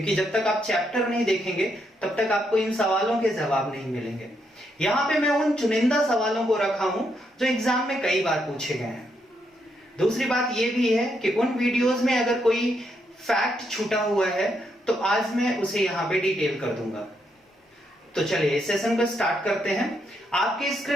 जब तक आप चैप्टर नहीं देखेंगे तब तक आपको इन सवालों के जवाब नहीं मिलेंगे। यहाँ पे मैं उन चुनिंदा सवालों को रखा हूं जो एग्जाम में कई बार पूछे गए हैं। दूसरी बात यह भी है कि उन वीडियोस में अगर कोई फैक्ट छूटा हुआ है तो आज मैं उसे यहाँ पे डिटेल कर दूंगा। तो चलिए इस सेशन को स्टार्ट करते हैं। आपके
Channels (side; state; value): both; normal; correlation 0.78